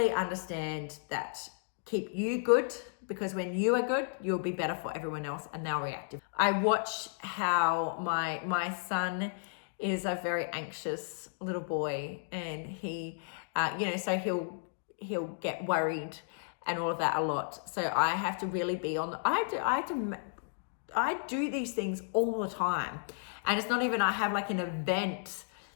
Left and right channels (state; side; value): silent; right; digital silence